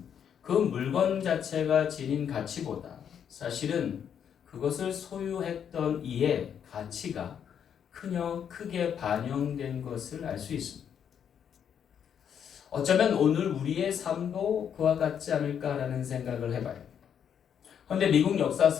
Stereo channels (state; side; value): quieter; right; 8.3 dB